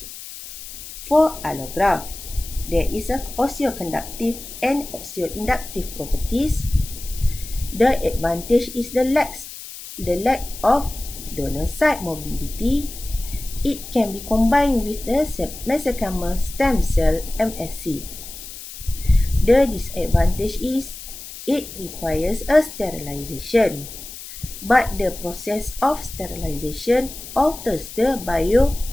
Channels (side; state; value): left; noise; hiss, 13 dB below the sound